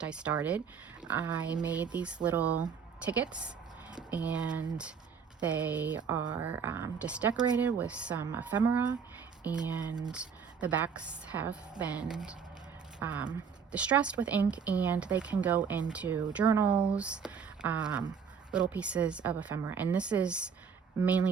I started. I made these little tickets, and they are just decorated with some ephemera, and the backs have been distressed with ink, and they can go into journals, little pieces of ephemera, and this is mainly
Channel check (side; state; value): left; quieter; 6.5 dB